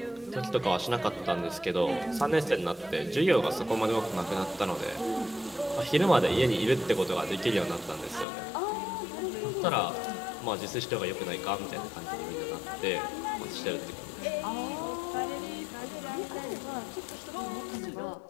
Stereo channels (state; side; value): drops out; right; at 8.2 s